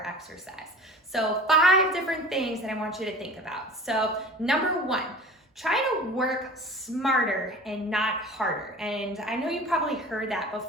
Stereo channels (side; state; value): both; normal; correlation 0.40